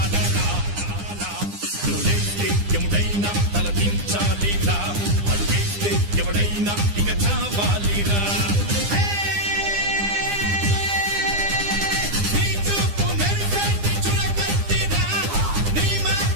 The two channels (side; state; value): left; late; 9.9 ms